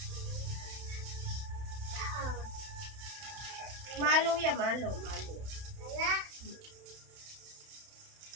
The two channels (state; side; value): late; left; 31 ms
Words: Malo yan, malo.